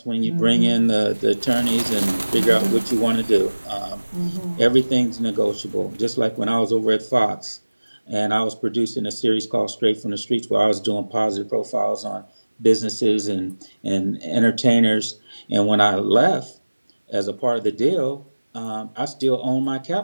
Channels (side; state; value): both; inverted; correlation -1.00